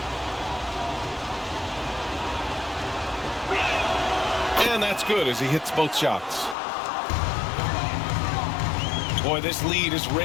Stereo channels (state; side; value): drops out; right; at 6.6 s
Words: And that's good as he hits both shots. Boy, this lead is